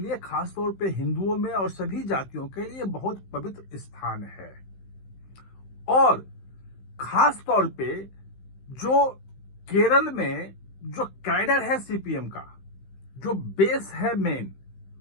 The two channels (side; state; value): right; late; 15 ms